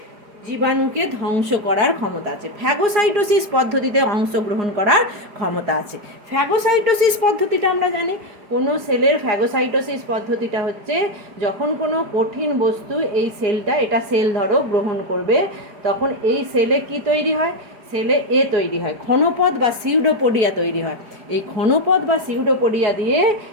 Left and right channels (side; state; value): left; late; 4.9 ms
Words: জীবাণুকে ধ্বংস করার ক্ষমতা আছে। ফ্যাগোসাইটোসিস পদ্ধতিতে অংশগ্রহণ করার ক্ষমতা আছে। ফ্যাগোসাইটোসিস পদ্ধতিটা আমরা জানি, কোনো সেলের ফ্যাগোসাইটোসিস পদ্ধতিটা হচ্ছে যখন কোনো কঠিন বস্তু এই সেলটা, এটা সেল ধরো গ্রহণ করবে, তখন এই সেলে কি তৈরি হয়? সেলে তৈরি হয়, ক্ষণপদ বা সিউডোপোডিয়া তৈরি হয়। এই ক্ষণপদ বা সিউডোপোডিয়া দিয়ে